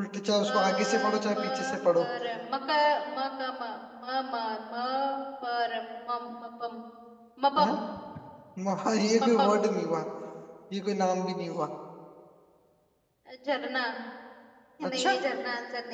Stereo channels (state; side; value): identical; both; correlation 1.00